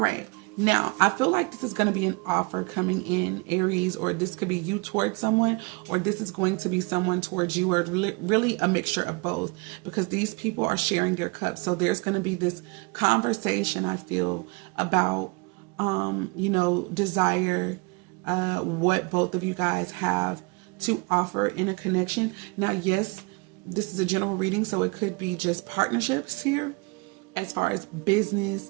Now, I feel like this is going to be an offer coming in, Aries, or this could be you towards someone, or this is going to be someone towards you, or really a mixture of both, because these people are sharing their cups. So there's going to be this conversation, I feel, about desire, what both of you guys have to offer in a connection. Now, yes, this is a general reading, so it could be just partnerships here as far as business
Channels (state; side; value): quieter; left; 29.5 dB